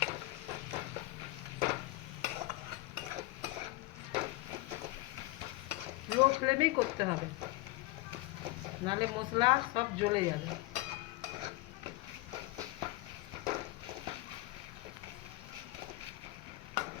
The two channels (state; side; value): quieter; right; 19.8 dB